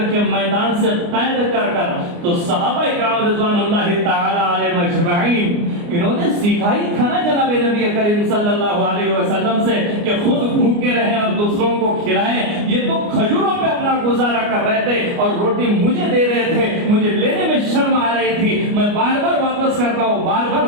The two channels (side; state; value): left; late; 29 ms